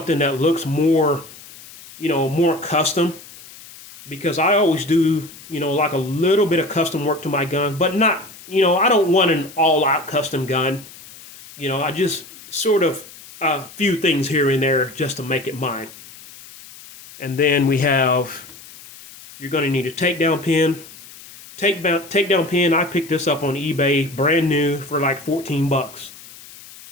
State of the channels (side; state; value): left; noise; hiss, 19 dB below the sound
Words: that looks more, you know, more custom. Because I always do, you know, like a little bit of custom work to my gun. But not, you know, I don't want an all-out custom gun. You know, I just sort of a few things here and there just to make it mine. And then you're going to need a takedown pin. Takedown pin, I picked this up on eBay, brand new, for like $14.